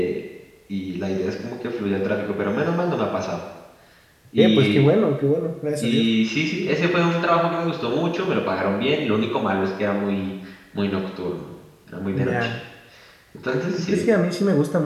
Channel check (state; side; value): identical; both; correlation 1.00